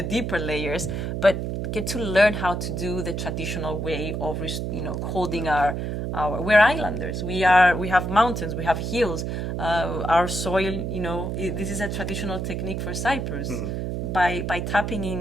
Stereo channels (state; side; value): noise; right; hum, 3 dB below the sound